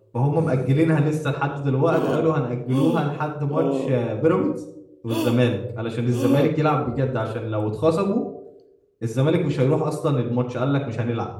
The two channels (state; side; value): identical; both; correlation 1.00